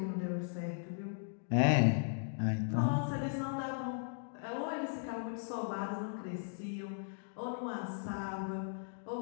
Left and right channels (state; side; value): silent; right; digital silence